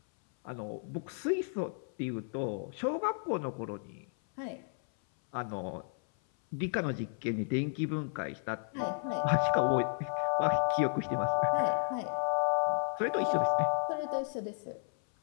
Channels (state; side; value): silent; right; 56 dB below the other